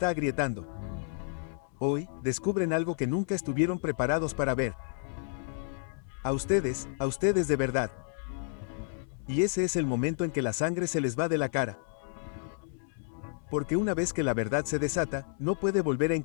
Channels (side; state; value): right; silent; 57 dB below the other